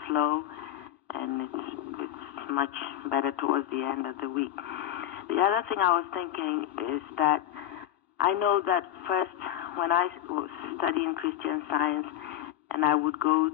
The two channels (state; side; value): quieter; right; 12.3 dB